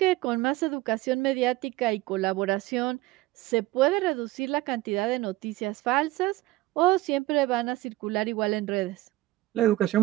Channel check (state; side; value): quieter; left; 18.0 dB